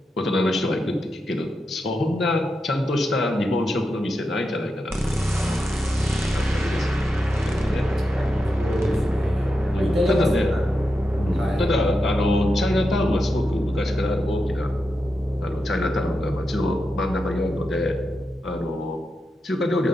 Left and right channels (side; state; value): both; normal; correlation 0.87